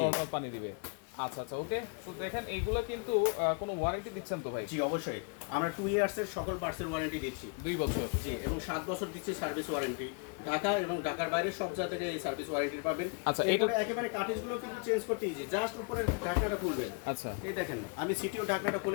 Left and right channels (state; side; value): quieter; right; 35.0 dB